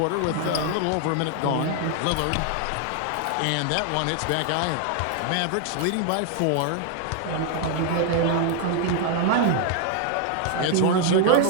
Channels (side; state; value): both; different; correlation 0.00